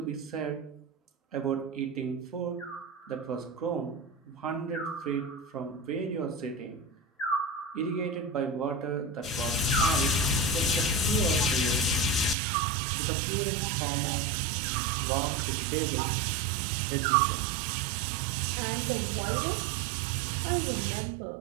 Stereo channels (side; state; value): left; drops out; at 12.4 s